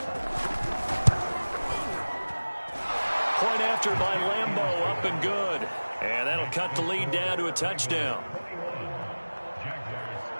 Point after by Lambeau, up and good. And that'll cut the lead down to a touchdown.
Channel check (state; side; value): inverted; both; correlation -1.00